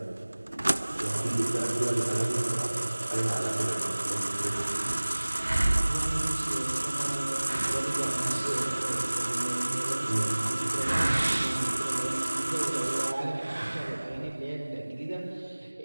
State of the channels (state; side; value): inverted; both; correlation -1.00